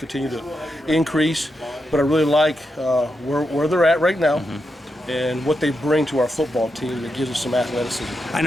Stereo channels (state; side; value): normal; both; correlation 0.85